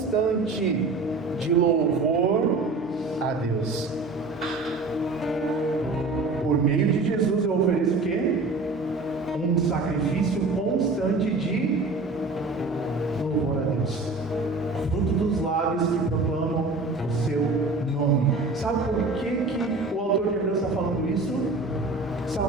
de louvor a Deus. Por meio de Jesus eu ofereço o quê? Um sacrifício constante de louvor a Deus. Fruto dos lábios que proclamam o seu nome. Sabe por que o autor de Hebreus está falando isso?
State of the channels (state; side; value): quieter; left; 3.5 dB